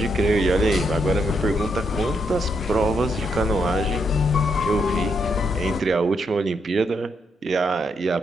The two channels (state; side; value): normal; both; correlation 0.78